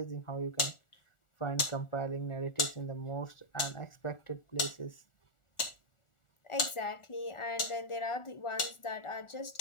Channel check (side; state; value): right; late; 1.4 ms